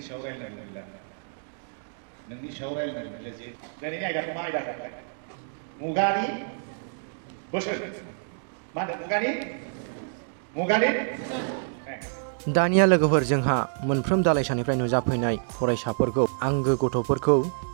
सायाव रायलायनांगौ गैला। नोंनि सायाव रायलायनांगौ गैला जे दिनैनि आयदाखौ मा आयदा होनोमोनलाय? मुगानि बोसोन। मा होनदों? मुगानि दानिया लोगोफोर जोंहा मोनफ्रोम दालाइसानिफ्राय नुजाफैनाय फरायसाफोरखौ, आंगो गथ'फोरखौ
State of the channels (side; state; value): left; silent; digital silence